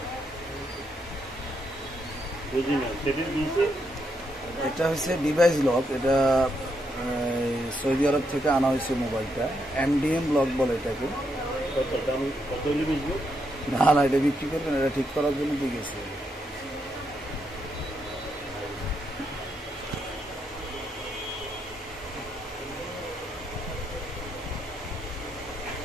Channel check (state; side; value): normal; both; correlation 0.79